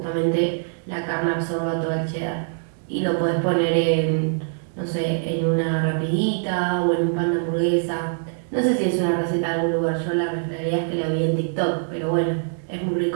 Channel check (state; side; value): silent; left; digital silence